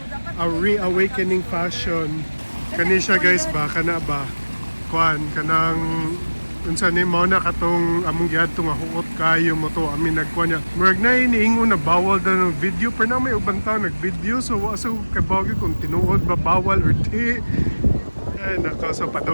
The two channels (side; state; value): both; inverted; correlation -1.00